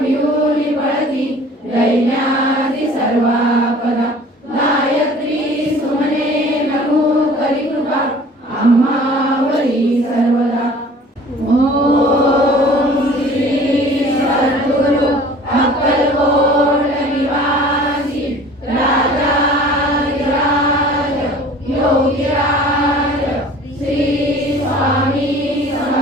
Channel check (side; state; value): both; normal; correlation 0.47